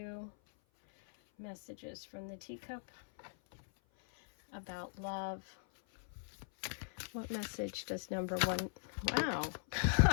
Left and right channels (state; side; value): silent; right; 51 dB below the other